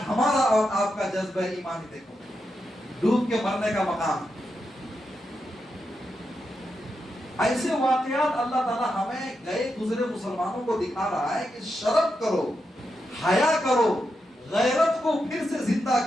ہمارا اور آپ کا جذبہ ایمانی دیکھو، ڈوب کے مرنے کا مقام۔ ایسے واقعات اللہ تعالیٰ ہمیں گئے گزرے مسلمانوں کو دکھا رہا ہے کہ شرم کرو، حیا کرو، غیرت کو پھر سے زندہ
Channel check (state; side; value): normal; both; correlation 0.86